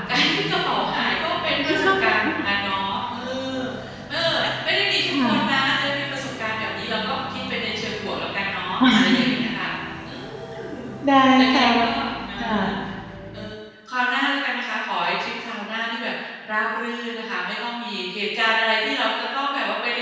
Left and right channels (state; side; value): identical; both; correlation 1.00